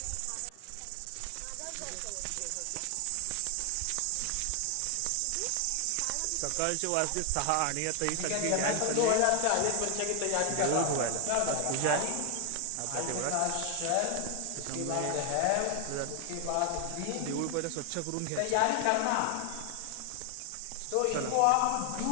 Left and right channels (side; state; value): both; different; correlation 0.00